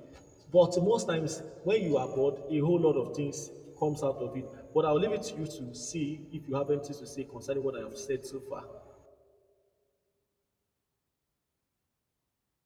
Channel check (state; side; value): identical; both; correlation 1.00